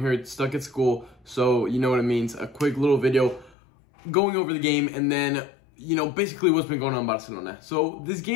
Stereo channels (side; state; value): right; drops out; at 3.6 s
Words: here stuck at school, so you know what it means. A quick little video going over the game and then, you know, basically what's been going on in Barcelona. So this